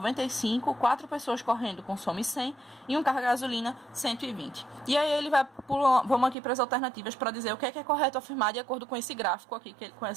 4 pessoas correndo consomem 100 e um carro a gasolina 120. E aí ele vai vamos aqui para as alternativas para dizer o que é correto afirmar de acordo com esse gráfico aqui,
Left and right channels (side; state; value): left; drops out; at 6.4 s